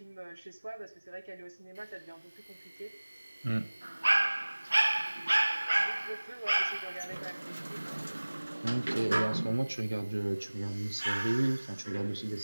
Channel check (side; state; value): both; inverted; correlation -1.00